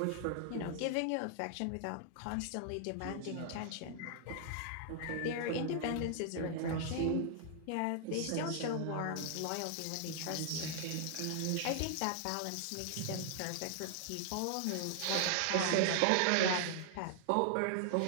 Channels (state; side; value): different; both; correlation 0.00